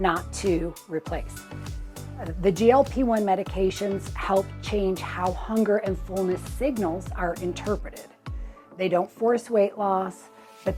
to replace. The GLP-1 medications help change how hunger and fullness signals are interpreted. They don't force weight loss, but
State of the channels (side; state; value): both; identical; correlation 1.00